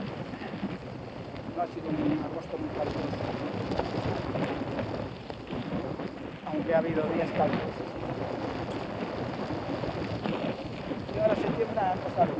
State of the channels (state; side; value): identical; both; correlation 1.00